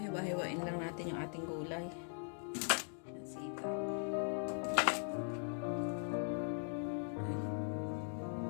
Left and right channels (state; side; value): silent; right; 51 dB below the other